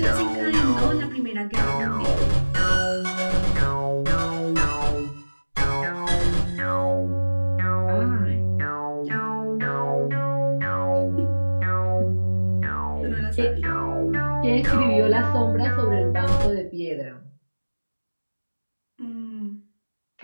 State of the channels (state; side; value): inverted; both; correlation -1.00